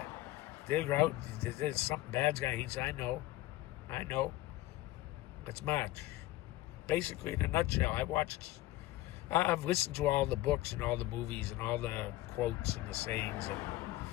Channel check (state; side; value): quieter; right; 16.5 dB